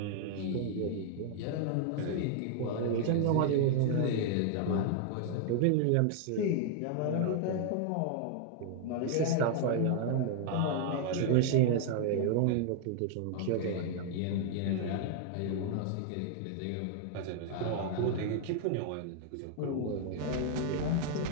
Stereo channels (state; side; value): different; both; correlation 0.00